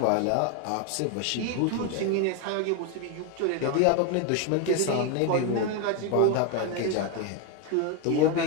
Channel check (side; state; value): both; different; correlation 0.01